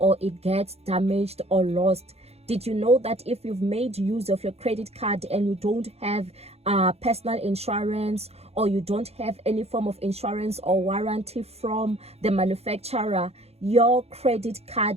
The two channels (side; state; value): left; late; 0.30 ms